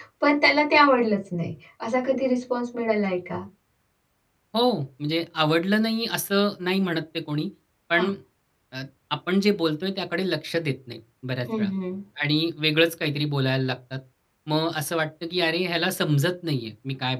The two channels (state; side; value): identical; both; correlation 1.00